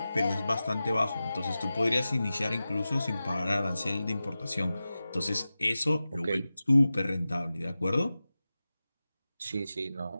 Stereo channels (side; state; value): both; inverted; correlation -0.94